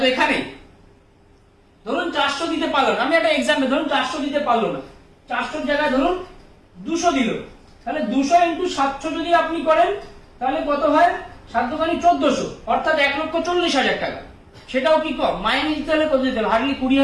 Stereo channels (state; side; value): identical; both; correlation 1.00